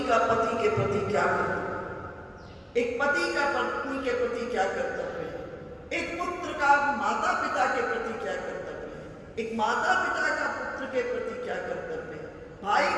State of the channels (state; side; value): identical; both; correlation 1.00